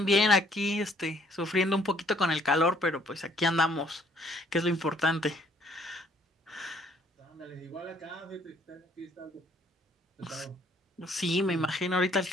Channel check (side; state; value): both; normal; correlation 0.63